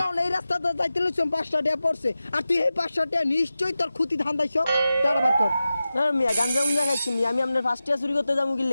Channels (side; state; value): both; inverted; correlation -0.94